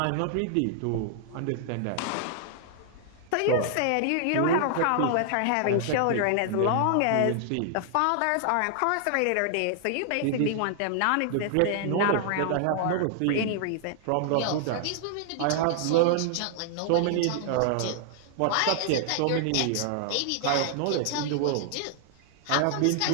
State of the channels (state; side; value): different; both; correlation 0.00